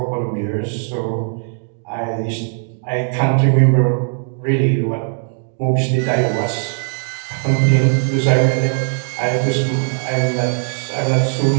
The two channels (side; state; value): left; silent; digital silence